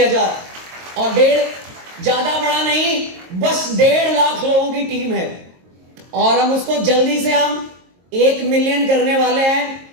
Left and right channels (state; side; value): late; left; 22 ms